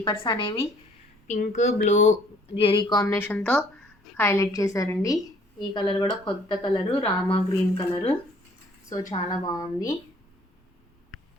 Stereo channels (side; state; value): both; normal; correlation 0.59